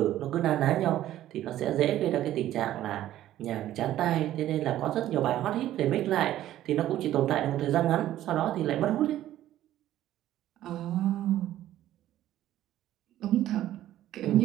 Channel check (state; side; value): quieter; left; 13.2 dB